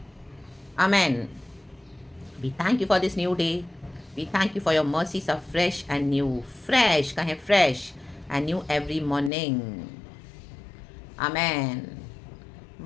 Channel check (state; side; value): drops out; right; at 9.3 s